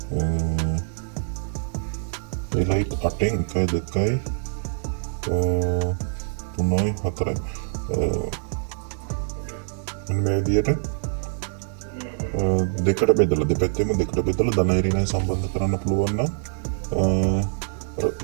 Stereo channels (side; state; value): left; silent; digital silence